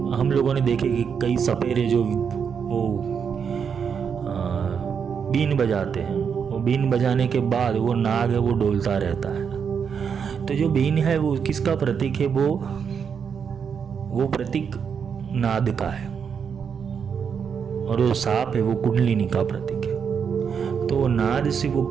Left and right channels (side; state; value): left; quieter; 6.8 dB